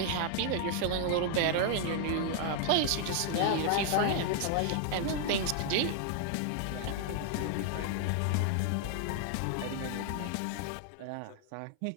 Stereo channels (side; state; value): both; different; correlation 0.00